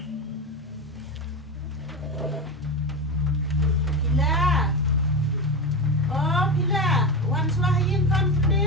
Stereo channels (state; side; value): normal; both; correlation 0.19